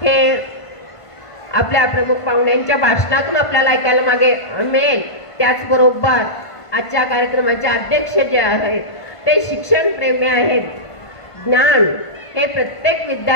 आपल्या प्रमुख पाहुण्यांच्या भाषणातून आपल्याला ऐकायला मागे मिळेल. त्याचबरोबर आजच्या कार्यक्रमाचे अध्यक्ष जे आहेत ते शिक्षण प्रेमी आहेत. ज्ञान हे प्रत्येक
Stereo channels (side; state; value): right; late; 1.5 ms